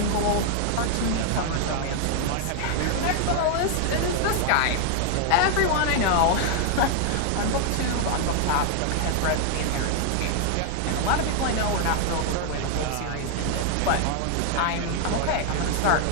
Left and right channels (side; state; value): both; different; correlation 0.00